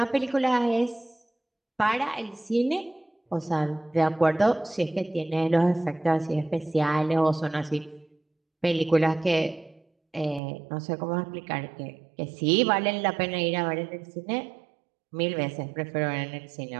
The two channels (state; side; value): drops out; left; at 10.4 s